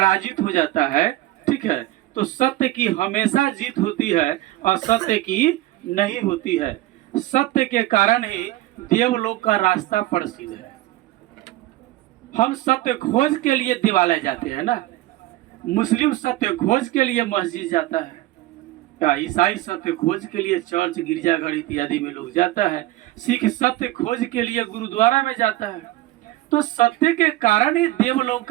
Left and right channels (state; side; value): quieter; left; 16.8 dB